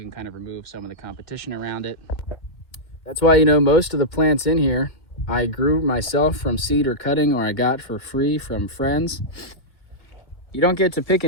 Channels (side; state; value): right; late; 2.3 ms